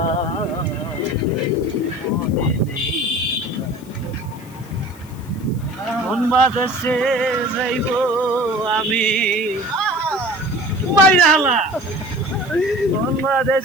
মন বাদেশে যাইব আমি বাইরালা, মন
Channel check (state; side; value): noise; left; hiss, 24 dB below the sound